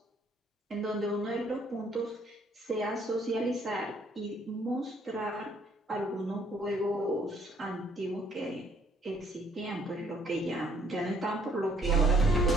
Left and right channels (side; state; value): both; normal; correlation 0.64